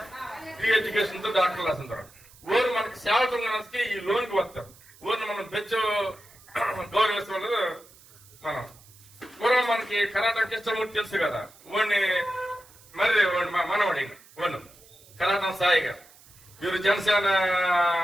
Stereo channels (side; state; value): right; noise; hiss, 24 dB below the sound